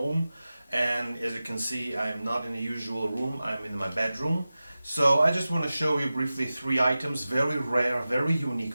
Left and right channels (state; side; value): inverted; both; correlation -0.95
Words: and as you can see, I am not in the usual room. I'm in my bedroom. So I just want to show you briefly 3 items, very rare, very